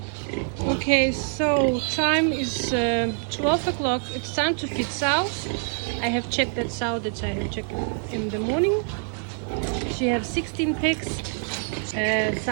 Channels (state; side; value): silent; left; 58 dB below the other